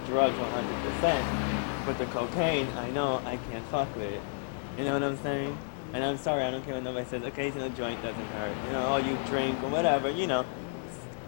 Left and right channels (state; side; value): silent; right; digital silence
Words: drugs 100%. But the cocaine, I know I can't fuck with it. You know what I'm saying? And I'm sorry, I don't care what nobody says. Occasional joint doesn't hurt. You drink or whatever,